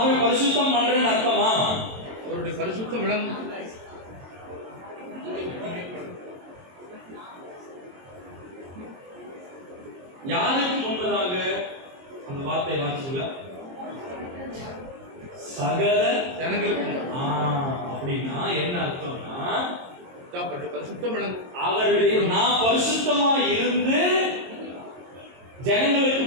பரிசுத்தம் பண்றேன்னு அர்த்தமா? அவருடைய பரிசுத்தம் விளங்கும். யாருக்கு முன்பதாக அந்த வார்த்தை வாசிச்சுல சகல ஜனங்களுக்கு. அப்படின்னா என்ன அர்த்தம்னா பரிசுத்தம் விளங்கும். அவருடைய நான் பரிசுத்தமா இருந்து ஜனங்களுக்கு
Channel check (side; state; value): left; late; 22 ms